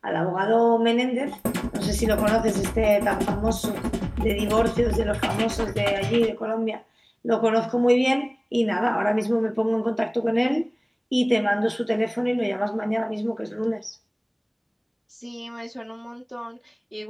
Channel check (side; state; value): both; identical; correlation 1.00